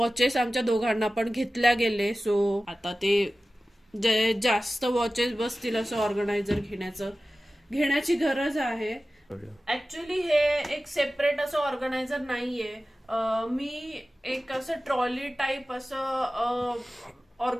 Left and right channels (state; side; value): normal; both; correlation 0.96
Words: आमच्या दोघांना पण घेतल्या गेले. सो आता ते जे जास्त वॉचेस बसतील असं ऑर्गनायझर घेण्याची गरज आहे. ऍक्च्युली हे एक सेपरेट असं ऑर्गनायझर नाहीये. मी एक असं ट्रॉली टाईप असं